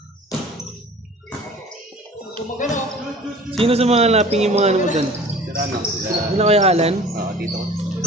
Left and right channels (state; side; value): normal; both; correlation 0.45